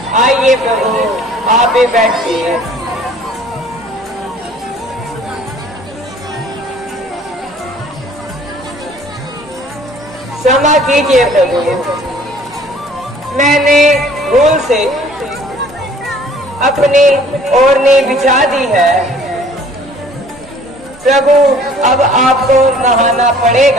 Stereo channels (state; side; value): normal; both; correlation 0.53